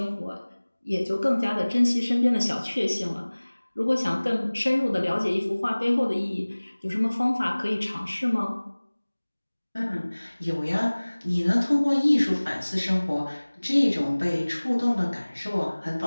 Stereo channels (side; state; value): both; inverted; correlation -1.00